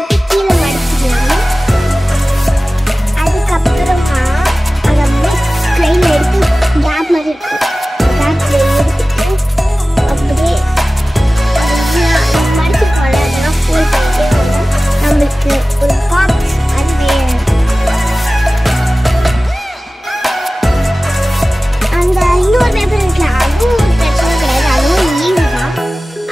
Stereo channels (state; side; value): normal; both; correlation 0.97